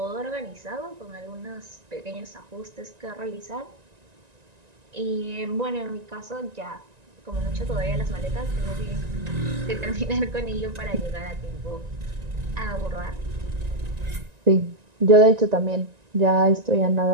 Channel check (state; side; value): late; left; 1.9 ms